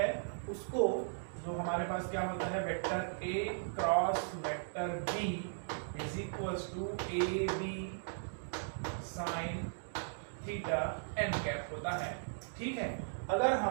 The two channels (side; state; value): left; silent; digital silence